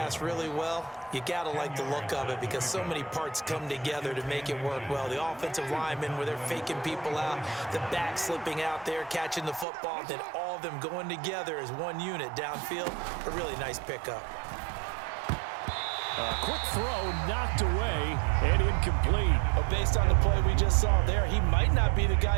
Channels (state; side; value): drops out; left; at 9.7 s